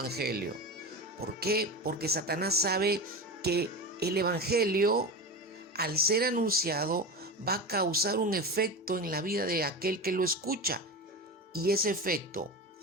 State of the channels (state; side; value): normal; both; correlation 0.24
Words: ¿Por qué? Porque Satanás sabe que el Evangelio, al ser anunciado, va a causar un efecto en la vida de aquel que lo escucha. Y ese efecto